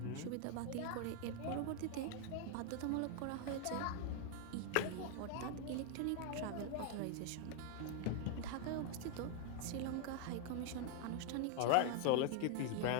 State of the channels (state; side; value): different; both; correlation 0.00